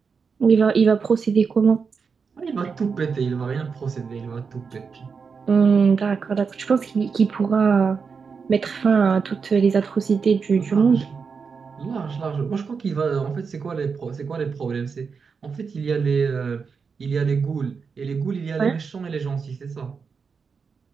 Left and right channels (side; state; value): left; quieter; 5.5 dB